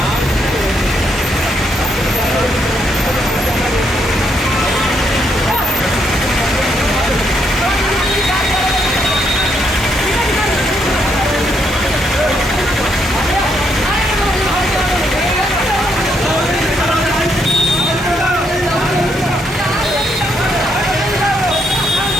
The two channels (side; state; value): both; normal; correlation 0.75